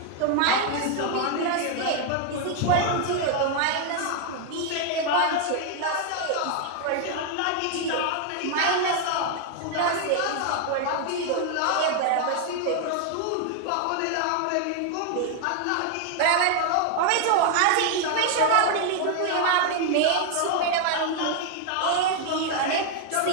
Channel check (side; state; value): both; different; correlation 0.00